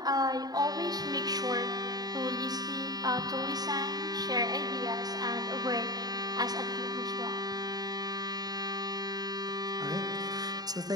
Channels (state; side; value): late; left; 0.19 ms